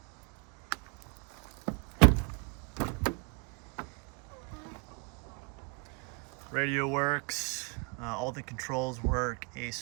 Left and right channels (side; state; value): left; quieter; 32.5 dB